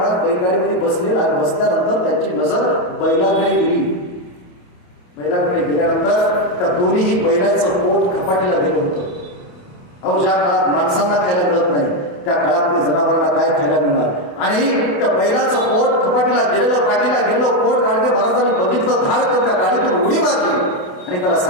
बैलगाडीमध्ये बसले आणि बसल्यानंतर त्यांची नजर बैलाकडे गेली. बैलाकडे गेल्यानंतर त्या दोन्ही बैलाचं पोट खपाटीला गेलं होतं. अहो, ज्या काळात माणसांना खायला मिळत नाही त्या काळामध्ये जनावरांना काय खायला मिळणार? आणि त्या बैलाचं पोट खपाटीला गेलेलं, पाठीला गेलेलं पोट गाडगे महाराजांनी बघितलं, धाड करून त्या गाडीतून उडी मारली आणि त्याला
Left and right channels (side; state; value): right; late; 28 ms